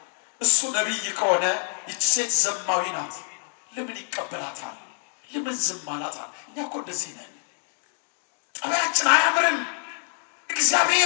እሱ ነቢይ ከሆነ ይች ሴት ዘማዊ ናት፣ ለምን ይቀበላታል? ለምን ዝም አላታል? እኛ እኮ እንደዚህ ነን። ጠባያችን አያምርም።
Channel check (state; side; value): silent; right; 56 dB below the other